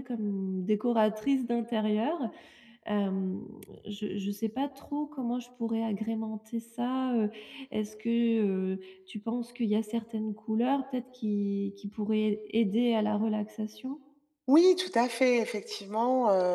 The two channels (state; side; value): identical; both; correlation 1.00